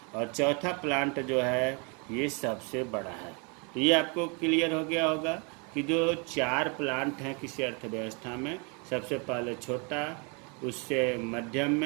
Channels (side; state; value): left; quieter; 33.4 dB